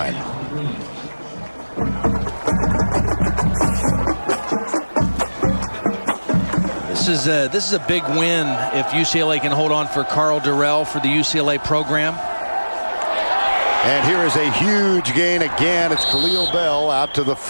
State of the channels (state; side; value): inverted; both; correlation -1.00